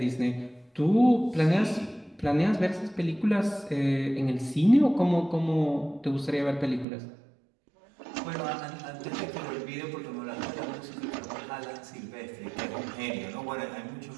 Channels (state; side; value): drops out; left; at 6.9 s